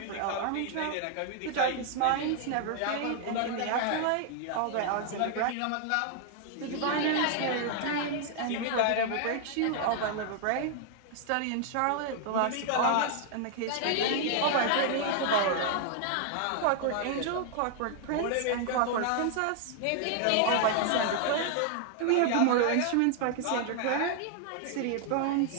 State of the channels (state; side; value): different; both; correlation 0.00